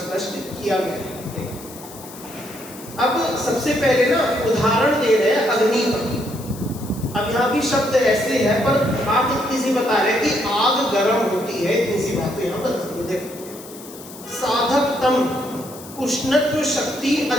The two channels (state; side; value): noise; left; hiss, 17 dB below the sound